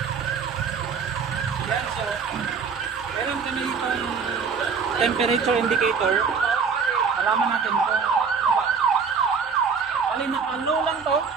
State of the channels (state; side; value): quieter; left; 5.7 dB